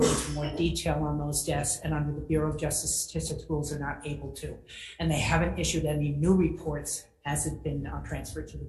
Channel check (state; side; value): identical; both; correlation 1.00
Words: more detail on those deaths, and under the Bureau of Justice Statistics rules, they're not able to. And they haven't issued any new reports as it's been transferred to the